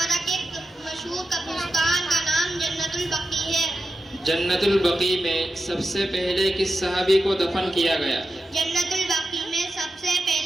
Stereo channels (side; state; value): both; normal; correlation 0.90